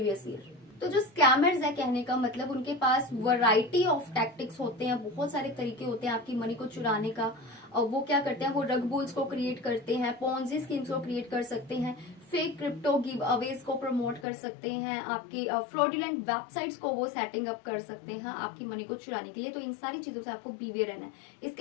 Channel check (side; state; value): right; drops out; at 14.2 s